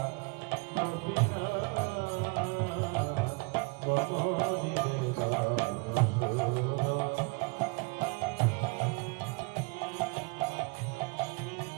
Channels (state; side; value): quieter; left; 29.6 dB